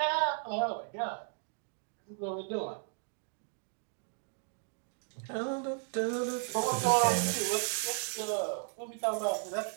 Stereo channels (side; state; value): left; silent; 55 dB below the other